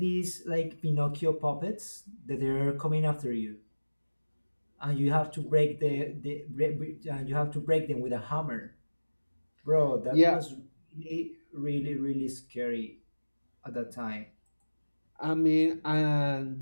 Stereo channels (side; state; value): both; inverted; correlation -1.00